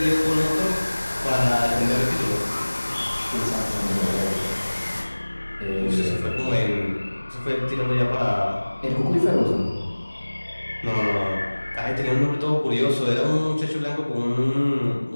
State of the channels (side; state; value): both; inverted; correlation -1.00